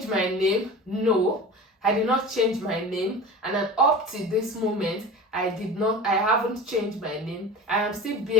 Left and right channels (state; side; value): normal; both; correlation 0.34